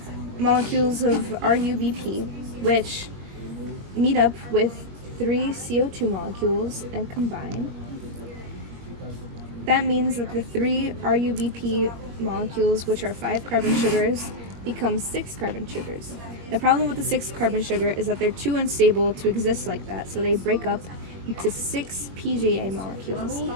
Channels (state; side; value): late; left; 21 ms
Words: molecules of RUBP, which meet up with 3 CO2 molecules and combine. That means that the 3 RUBP molecules, which are 5 carbon sugars, become 6 carbon sugars. The problem with the 6 carbon sugar is that they're too unstable to exist like that, so they break up into 6 PGA molecules,